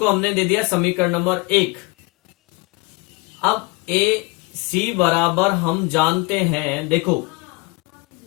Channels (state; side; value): quieter; right; 26.3 dB